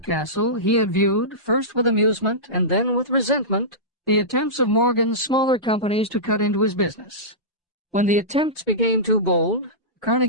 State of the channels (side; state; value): both; normal; correlation -0.17